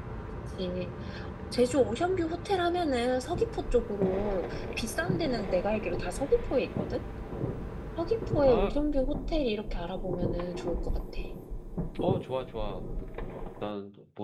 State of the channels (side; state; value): both; identical; correlation 1.00